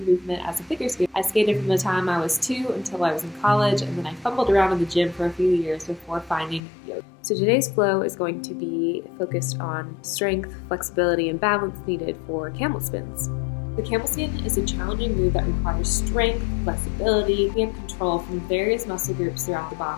movement as a figure skater. I skated from the time I was 2 until I was in college, and then I fumbled around in the gym for a few years before finding yoga. So today's flow is going to be focused on strength, flexibility, and balance needed for camel spins. The camel spin is a challenging move that requires strength, flexibility, and control from various muscle groups throughout the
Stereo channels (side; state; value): right; drops out; at 6.6 s